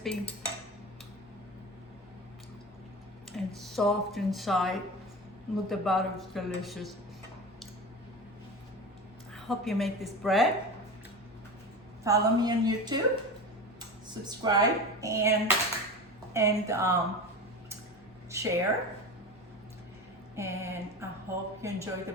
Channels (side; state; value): both; normal; correlation 0.28